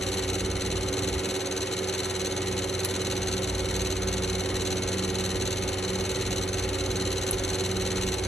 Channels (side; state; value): both; normal; correlation 0.76